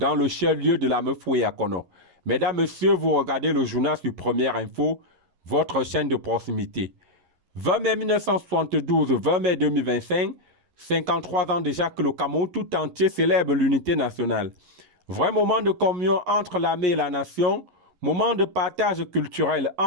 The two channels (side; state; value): left; late; 11 ms